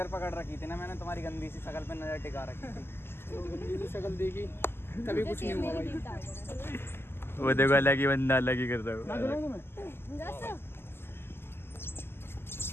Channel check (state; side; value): late; right; 0.11 ms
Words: पकड़ रखी थी ना मैंने, तुम्हारी गंदी सी शक्ल पे नजर टिका रखी थी। तो गंदी सी शक्ल देखी तभी कुछ नहीं हुआ भाई। वो देखो अलग ही बंदा अलग ही कर रहा मैं झुलाऊं तुम्हें? जैसे